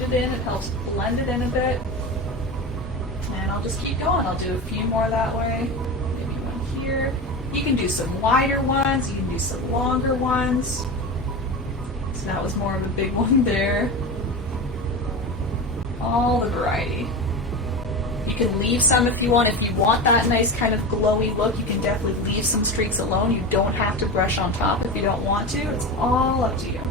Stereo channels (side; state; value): both; normal; correlation 0.25